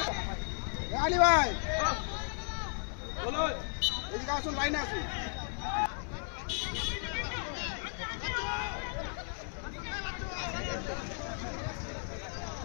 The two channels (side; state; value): right; silent; 55 dB below the other